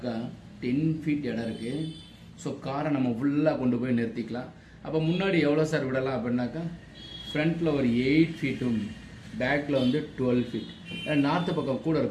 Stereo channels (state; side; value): identical; both; correlation 1.00